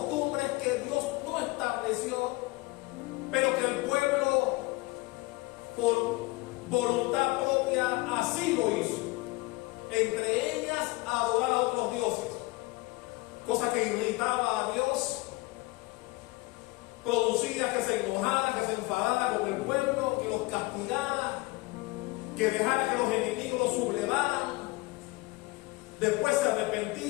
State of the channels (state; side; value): quieter; right; 22.7 dB